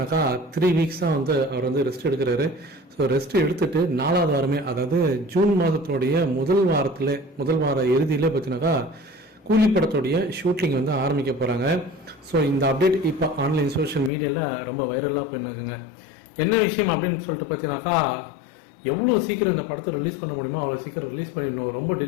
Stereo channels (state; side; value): drops out; right; at 14.1 s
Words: 3 வீக்ஸ் தான் அவர் ரெஸ்ட் எடுக்கிறாரு. ஸோ ரெஸ்ட் எடுத்துட்டு 4வது வாரமே, அதாவது ஜூன் மாதத்தினுடைய முதல் வார இறுதியில் பார்த்தீங்கன்னாக்கா கூலி படத்துடைய ஷூட்டிங் ஆரம்பிக்க போகிறாங்க. ஸோ இந்த அப்டேட் இப்போ ஆன்லைன் சோஷியல் மீடியாவில் ரொம்ப வைரலாக போயிருக்குங்க. என்ன விஷயம் அப்படின்னு சொல்லிட்டு பார்த்தீங்கன்னாக்கா, எவ்வளோ சீக்கிரம் இந்த படத்தை ரிலீஸ் பண்ண முடியுமோ அவ்வளோ சீக்கிரம் ரிலீஸ் பண்ணிடணும், ரொம்ப